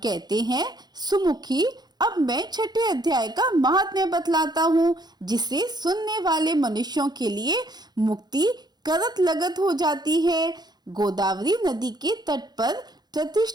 हैं, सुमुखी अब मैं छठे अध्याय का महात्म्य बतलाता हूँ, जिसे सुनने वाले मनुष्यों के लिए मुक्ति करत लगत हो जाती है। गोदावरी नदी के तट पर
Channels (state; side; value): late; left; 0.20 ms